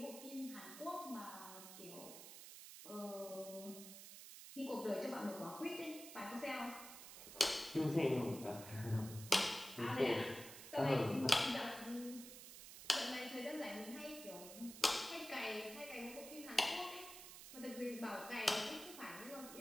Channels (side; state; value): right; noise; hiss, 12 dB below the sound